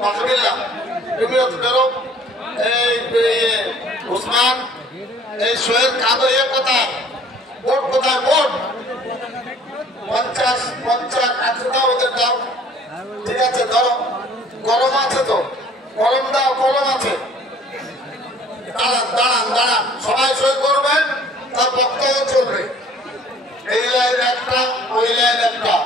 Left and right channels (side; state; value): both; normal; correlation 0.53